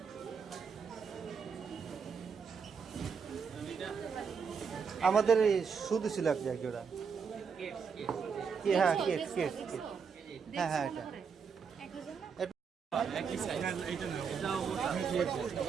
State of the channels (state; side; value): quieter; left; 6.1 dB